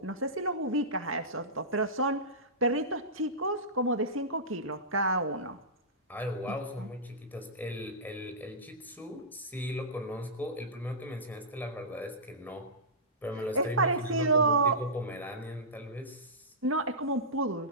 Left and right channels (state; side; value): normal; both; correlation -0.17